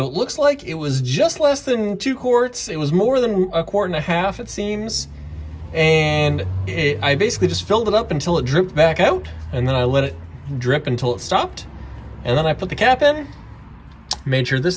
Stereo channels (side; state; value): both; identical; correlation 1.00